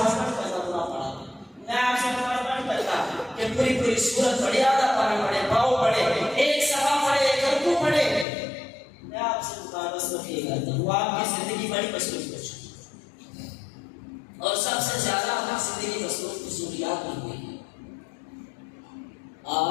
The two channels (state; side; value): drops out; right; at 8.2 s